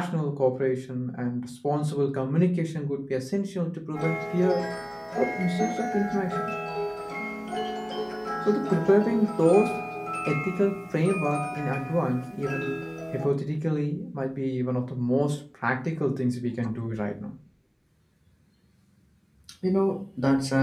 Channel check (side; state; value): both; identical; correlation 1.00